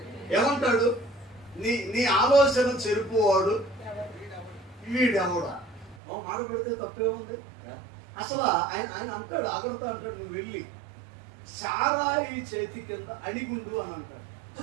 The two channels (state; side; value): drops out; left; at 6.0 s